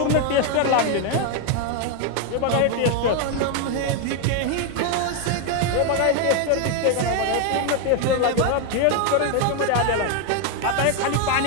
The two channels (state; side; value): different; both; correlation 0.01